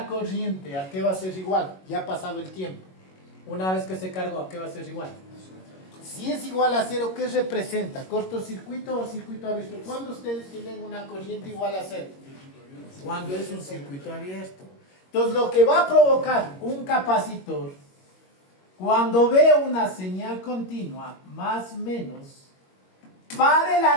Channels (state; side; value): late; right; 21 ms